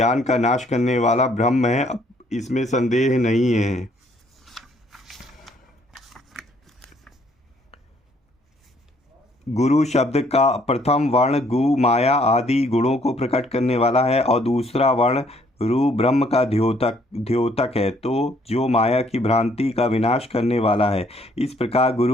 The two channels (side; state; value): both; normal; correlation 0.65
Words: का नाश करने वाला ब्रह्म है, इसमें संदेह नहीं है। गुरु शब्द का प्रथम वर्ण गु माया आदि गुणों को प्रकट करने वाला है और दूसरा वर्ण रू ब्रह्म का द्योतक है, तो जो माया की भ्रांति का विनाश करने वाला है। इस प्रकार